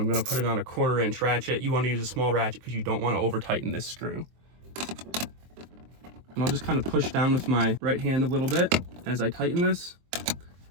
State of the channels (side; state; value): left; late; 23 ms